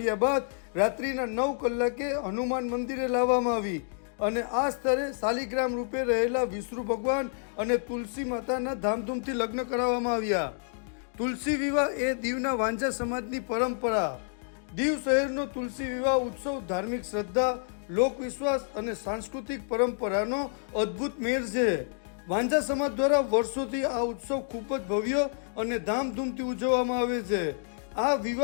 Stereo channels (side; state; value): right; silent; digital silence